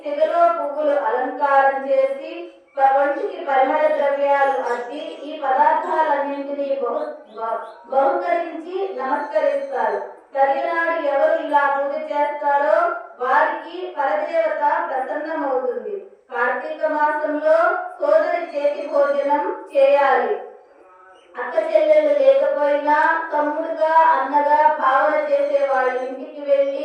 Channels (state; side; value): identical; both; correlation 1.00